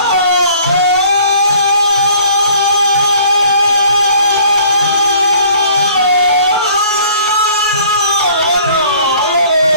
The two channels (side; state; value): both; inverted; correlation -0.53